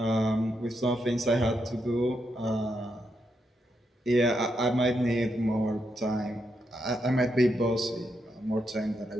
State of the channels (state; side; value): normal; both; correlation 0.82